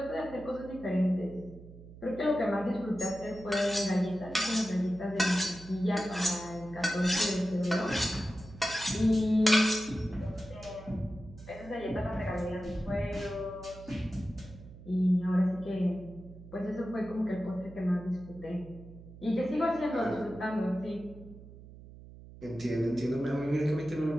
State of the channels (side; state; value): right; noise; hum, 17 dB below the sound